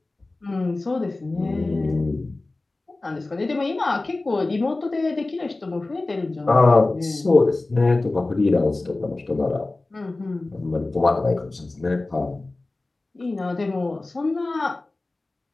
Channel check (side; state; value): right; quieter; 3.1 dB